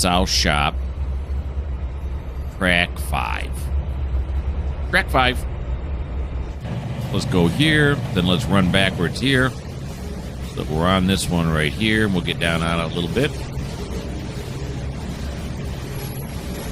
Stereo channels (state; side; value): identical; both; correlation 1.00